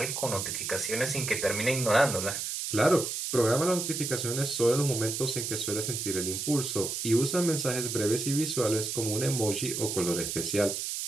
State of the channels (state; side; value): noise; right; hiss, 3 dB below the sound